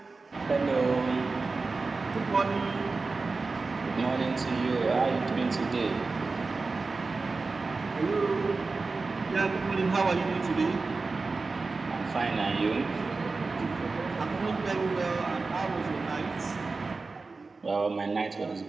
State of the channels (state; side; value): quieter; left; 3.9 dB